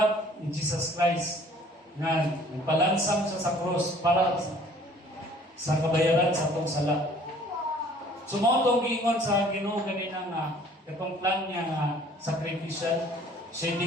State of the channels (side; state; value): both; normal; correlation 0.54